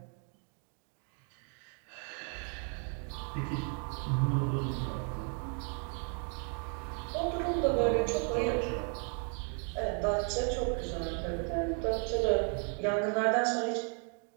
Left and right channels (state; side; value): quieter; left; 39.5 dB